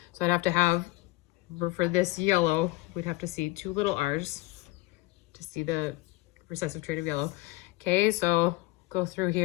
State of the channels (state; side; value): quieter; right; 20.5 dB